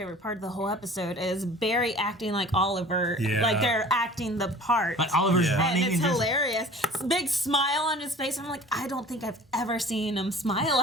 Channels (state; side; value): normal; both; correlation 0.45